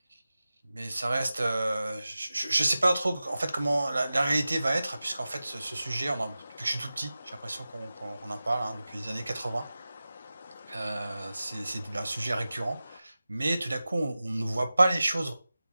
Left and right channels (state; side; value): inverted; both; correlation -0.95